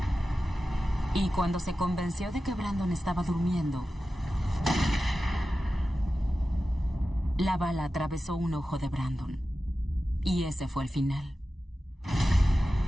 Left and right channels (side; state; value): both; normal; correlation 0.93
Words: Y cuando se convenció de que Brandon estaba durmiendo, la bala atravesó un ojo de Brandon. Y ese fue el final.